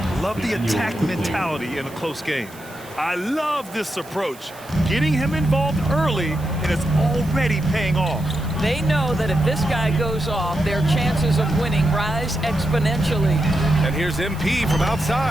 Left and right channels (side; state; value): right; noise; hiss, 21 dB below the sound